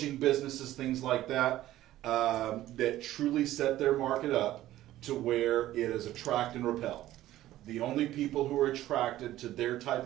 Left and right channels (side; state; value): left; quieter; 14.4 dB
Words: businesses, things like that, that truly set their market up to where it is attract and repel. The only people who are attracted to their type